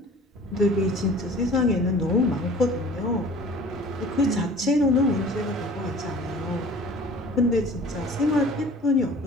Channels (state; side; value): normal; both; correlation 0.46